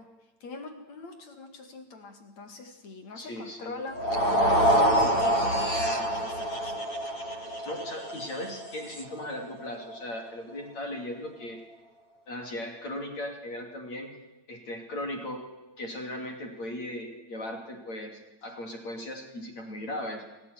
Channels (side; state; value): right; late; 8.8 ms